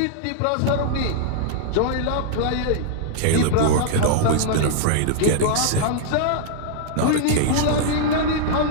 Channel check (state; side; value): different; both; correlation -0.01